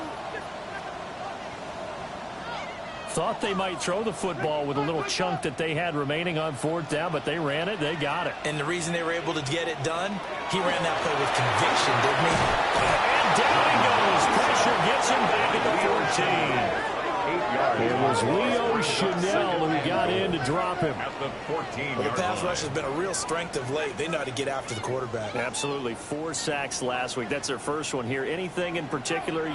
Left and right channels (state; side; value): identical; both; correlation 1.00